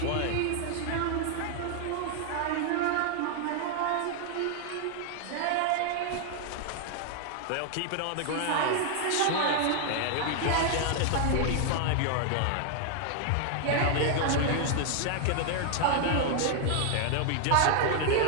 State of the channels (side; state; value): both; different; correlation 0.00